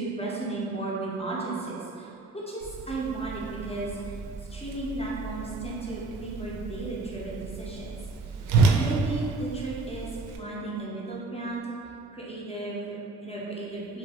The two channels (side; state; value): left; quieter; 3.3 dB